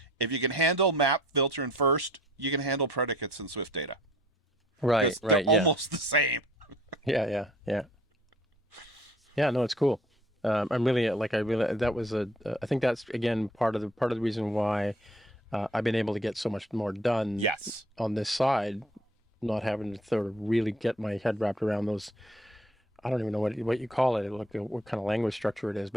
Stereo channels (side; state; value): both; normal; correlation 0.55